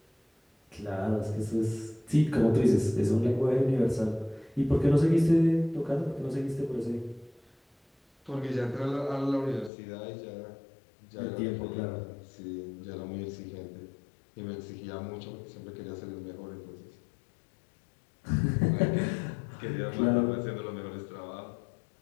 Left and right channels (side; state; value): right; drops out; at 9.7 s